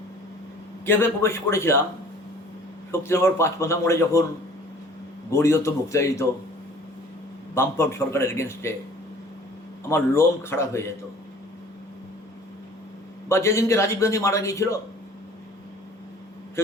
কীভাবে প্রবেশ করেছিলাম, শক্তিনগর পাঁচমাথা মোড়ে যখন গড়িয়ত মুক্তায়িত বামফ্রন্ট সরকারের এগেনস্টে আমার লোম খারাপ হয়ে যেত। বা যেদিনকে রাজীব গান্ধী মারা গিয়েছিল,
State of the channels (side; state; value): both; normal; correlation 0.49